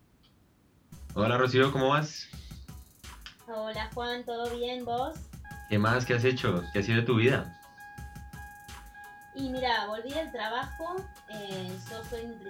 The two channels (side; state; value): both; identical; correlation 1.00